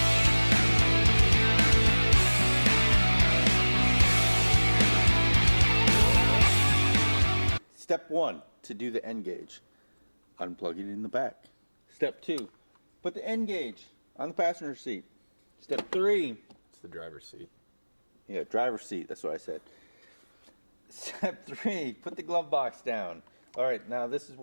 Step 1, to do the nGauge, unplug it in the back. Step 2, put the nGauge on the passenger seat. Step 3, it's the driver's seat. Yeah, driver's seat, that's what I said. Step 3, put the glove box down. Alright, now this is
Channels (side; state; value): both; inverted; correlation -1.00